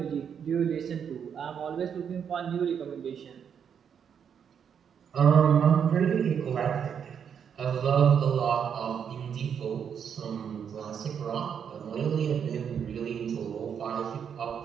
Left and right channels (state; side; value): quieter; left; 7.7 dB